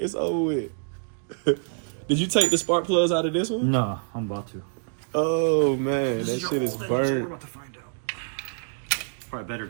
It's over with. Did you take the spark plugs out of this one? No, I'm about to. Oh, man. That shit is We're burnt. about to find out. Probably better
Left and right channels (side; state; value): left; silent; digital silence